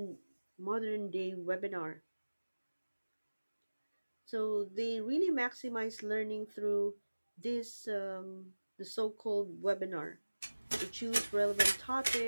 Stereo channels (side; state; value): both; inverted; correlation -1.00